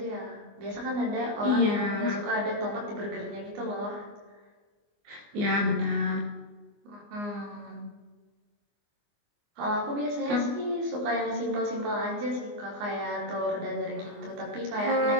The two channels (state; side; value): late; left; 24 ms